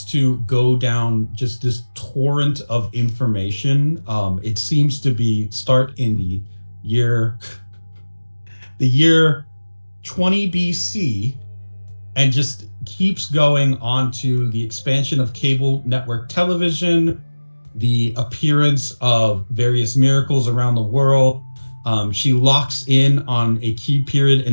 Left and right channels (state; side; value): inverted; both; correlation -1.00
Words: to go down just this torrent of information. It seems to start in the year 20 BC and just keeps going on to the expansion of cable network television, the appearance of various miracles around the world. She locks in on a key period in